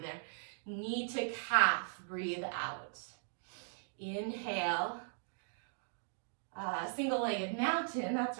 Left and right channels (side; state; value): left; silent; digital silence